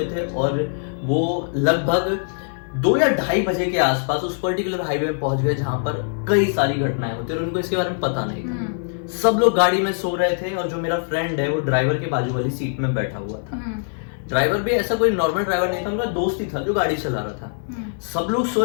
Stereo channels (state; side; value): silent; right; 58 dB below the other